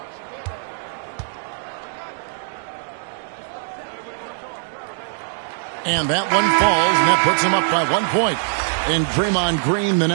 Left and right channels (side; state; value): left; silent; digital silence